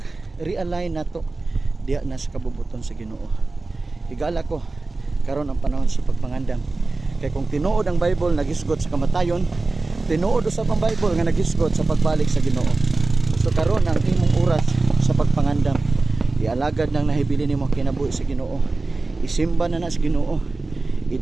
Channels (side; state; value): left; quieter; 3.4 dB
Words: nato diha na sa kabubuton sa Ginoo. Higala ko karon ang panahon sa pagpangandam. Kay kung tinuod ang Bible nagisgot sa kamatayon, tinuod usab ang Bible nga nagisgot sa pagbalik sa Ginoo. So karon ang imong oras sa pagpangandam, ialagad nang nahibili nimo kinabuhi sa Ginoo. Isimba na sa Ginoo.